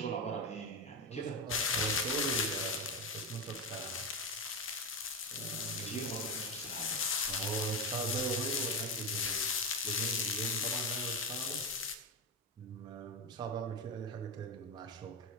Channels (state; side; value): normal; both; correlation 0.14